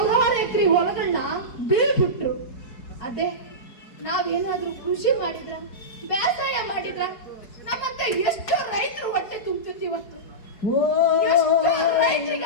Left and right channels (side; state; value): right; late; 4.7 ms